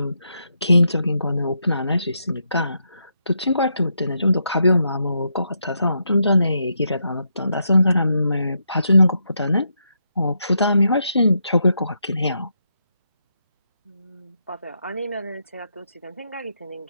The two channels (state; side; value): inverted; both; correlation -0.81